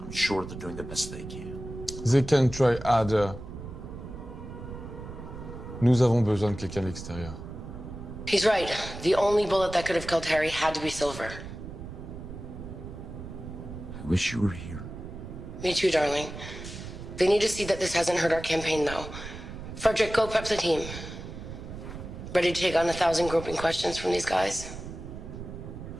I'm sure they're doing the best they can. They can try harder. Nous avons besoin de quelqu'un de l'extérieur. He's right. The only bullet that could have killed Harry had to be silver. I wish you were here. Me too, darling. They need to see that this hasn't hurt our campaign, though. Frederick, go prep the team. Ready to take on 1,000 groping questions from these guys?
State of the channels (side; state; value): right; noise; rumble, 11 dB below the sound